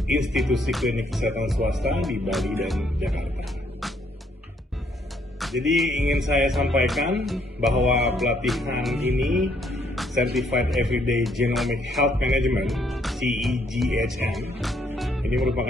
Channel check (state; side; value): normal; both; correlation 0.69